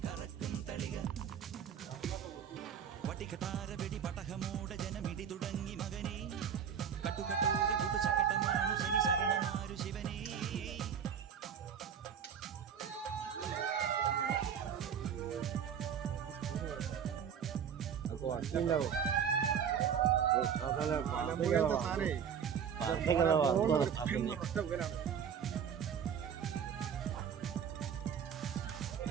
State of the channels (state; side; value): quieter; left; 7.9 dB